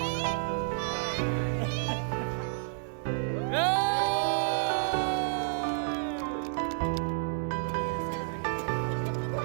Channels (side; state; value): left; silent; 58 dB below the other